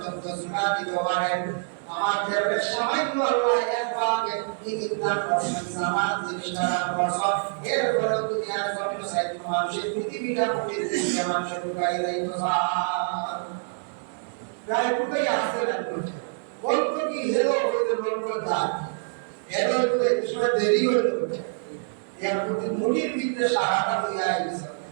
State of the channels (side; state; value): left; silent; 61 dB below the other